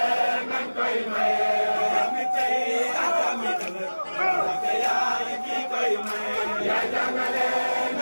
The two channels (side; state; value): both; inverted; correlation -1.00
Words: nañ koy maye jambi tey ak jambi ëllëg Mbacké yaay ki koy maye yaa ñangale